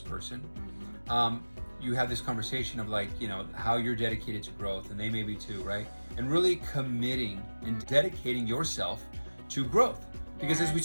you have this conversation of like, you know, how you're dedicated to growth and they may be too, right? And really committing and dedicating yourself to growth. Because as we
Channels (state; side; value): inverted; both; correlation -1.00